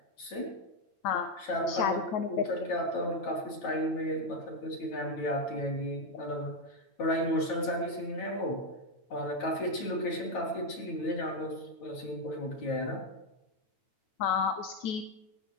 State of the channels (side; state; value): right; late; 9.1 ms